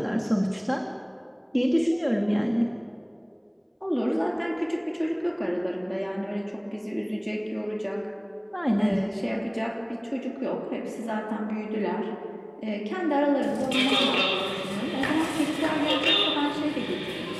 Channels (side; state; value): both; identical; correlation 1.00